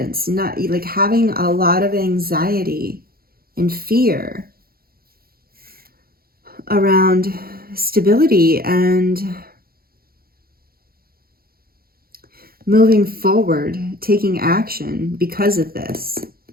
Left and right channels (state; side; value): late; left; 0.44 ms